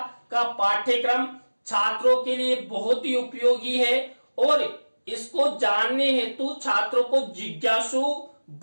का पाठ्यक्रम छात्रों के लिए बहुत ही उपयोगी है और इसको जानने हेतु छात्रों को जिज्ञासु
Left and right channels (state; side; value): inverted; both; correlation -1.00